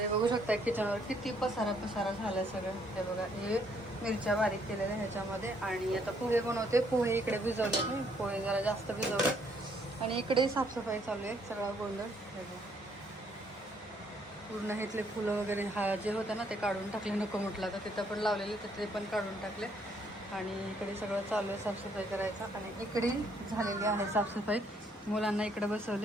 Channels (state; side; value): normal; both; correlation 0.68